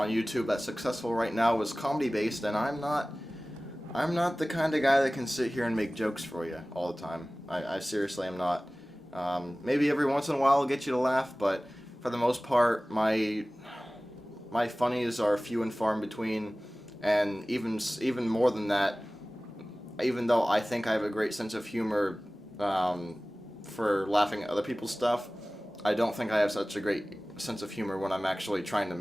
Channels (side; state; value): both; normal; correlation 0.98